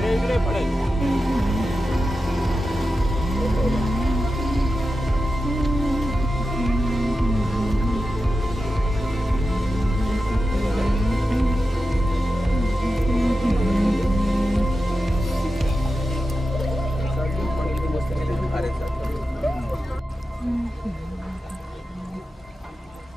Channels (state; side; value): normal; both; correlation 0.91